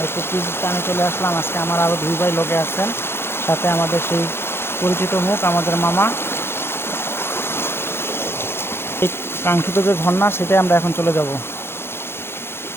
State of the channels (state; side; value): late; right; 0.11 ms